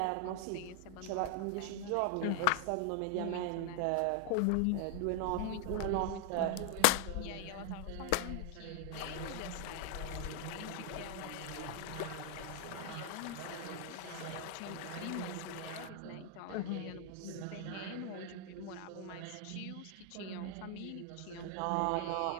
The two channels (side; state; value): both; different; correlation 0.00